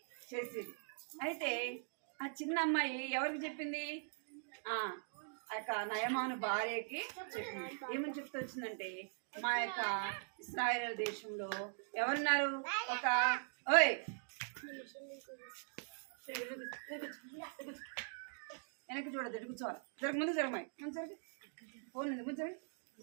చేసేది. అయితే ఆ చిన్న అమ్మాయి ఎవరికి చెప్పింది? ఆ యొక్క నయమాను భార్యకి చెప్పింది. ఏమని చెప్తూ వచ్చిందంటే, మా యొక్క ఇశ్రాయేలు దేశంలో ఎవరున్నారు? ఒక ఓయ్ వెనక్కి చూడదు, ఎటు కూర్చోవాలి, జరగ ముందు జరగమాయి, ముందు జరగ, ఫోన్ ఉంది ముందు జరగ,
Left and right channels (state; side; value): silent; left; digital silence